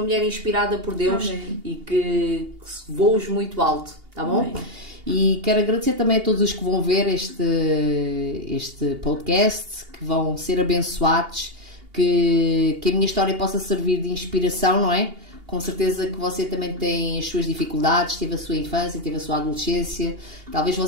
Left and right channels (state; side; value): late; left; 2.8 ms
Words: mulher inspirada por Deus. Amém. E que voes muito alto, tá bom? Amém. E quero agradecer também a todos os que vão ver este podcast, que vão ser abençoados, que a minha história possa servir de inspiração, não é? Com certeza que você também tem as suas dificuldades, teve a sua infância, teve a sua adolescência. Talvez